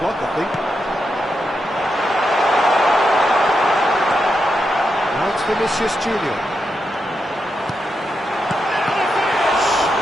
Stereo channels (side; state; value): both; normal; correlation 0.85